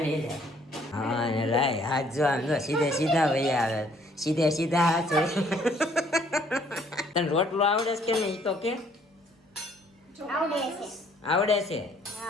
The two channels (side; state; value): both; normal; correlation 0.62